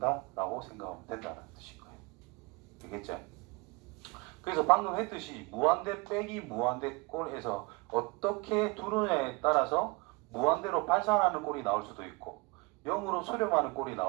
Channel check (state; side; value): quieter; left; 25.9 dB